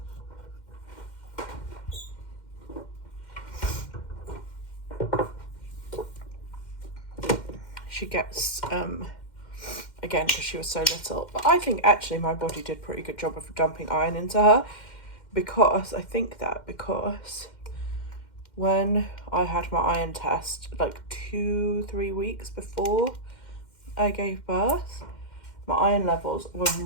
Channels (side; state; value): right; late; 2.1 ms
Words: she gets, again, because she was so little. But I think actually my body did a pretty good job of dumping iron into her, because when I had my iron test, like 2-3 weeks before I gave birth, my iron levels were